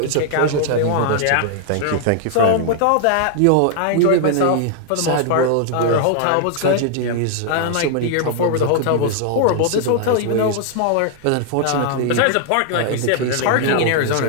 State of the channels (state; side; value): different; both; correlation -0.01